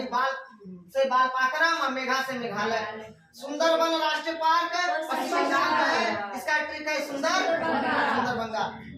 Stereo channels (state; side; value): identical; both; correlation 1.00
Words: बाल से बालपाखरम और मेघा से मेघालय। सुंदरबन राष्ट्रीय पार्क पश्चिम बंगाल में है। इसका ट्रिक है सुंदरबंगा।